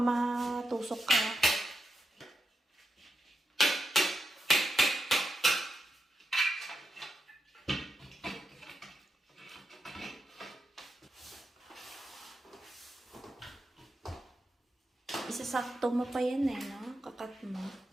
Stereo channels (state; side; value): normal; both; correlation 0.86